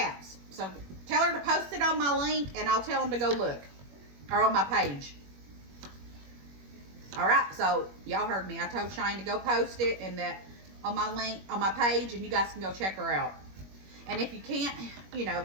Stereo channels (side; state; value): left; late; 21 ms